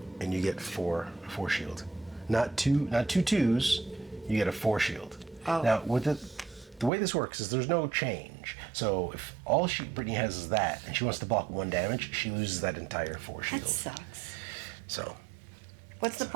And you get 4 shield. Not two 2s. You get a 4 shield. Oh. Now with the way this works is there's no change. So if all Brittany has is that, and she wants to block 1 damage, she loses that entire 4 shield. That sucks. So What's the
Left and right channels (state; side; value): drops out; left; at 6.9 s